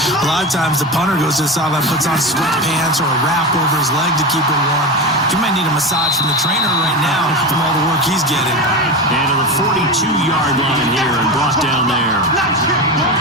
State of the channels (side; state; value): both; normal; correlation 0.22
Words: A lot of times the punter goes to the sideline, puts on sweatpants or a wrap over his leg to keep him warm. He might need a massage from the trainer right now from all the work he's getting. And to the 42-yard line here and brought down there.